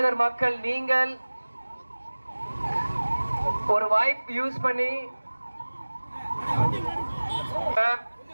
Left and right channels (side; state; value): both; inverted; correlation -1.00